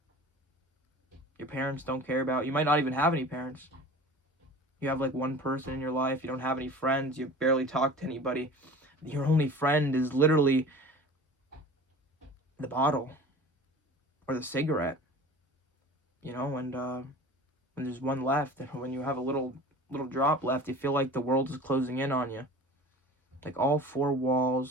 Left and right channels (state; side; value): normal; both; correlation 0.40